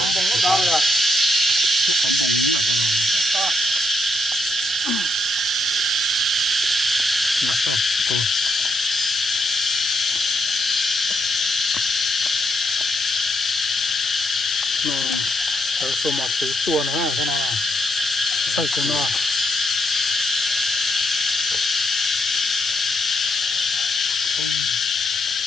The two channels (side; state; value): both; normal; correlation 0.78